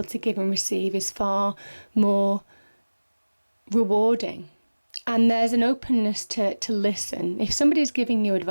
to give and receive is far more rewarding. And there's an openness to listen. If somebody's giving you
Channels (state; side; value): inverted; both; correlation -1.00